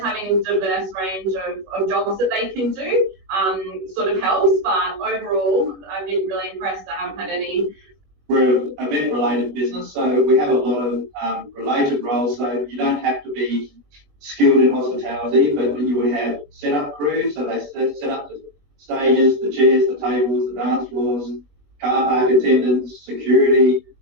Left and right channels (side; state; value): left; late; 21 ms